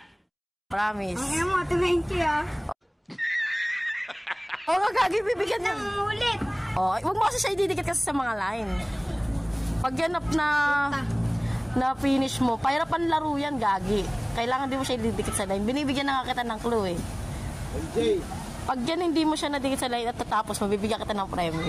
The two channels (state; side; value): identical; both; correlation 1.00